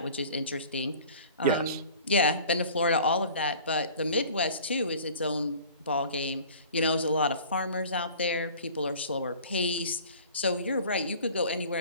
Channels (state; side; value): inverted; both; correlation -0.45